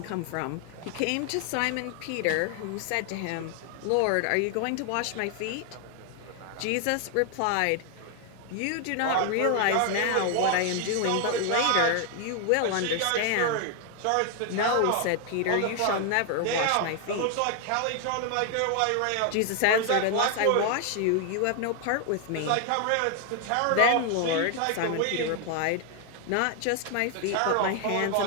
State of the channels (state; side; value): different; both; correlation 0.00